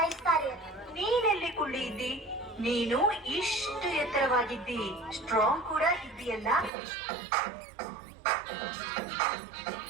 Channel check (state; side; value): drops out; left; at 6.7 s